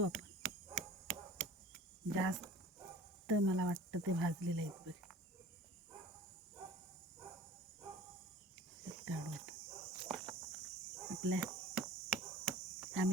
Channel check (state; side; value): normal; both; correlation 0.44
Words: आपण. जास्त मला वाटतं ते भाजलेले आहेत बघ. काढू आपल्या